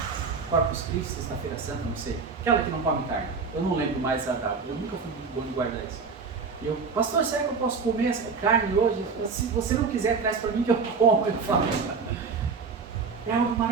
Corpus Christi, Sexta-feira Santa, não sei. Aquela que não come carne. Eu não lembro mais a data. Eu nunca fui muito bom de guardar isso. E eu, pastor, será que eu posso comer essa carne hoje? Se você não quiser, traz para mim que eu como. Eu falo. É algo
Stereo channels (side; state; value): left; quieter; 5.1 dB